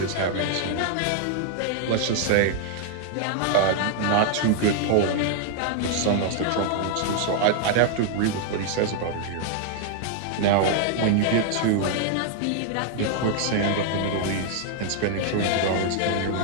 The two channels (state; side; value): different; both; correlation 0.00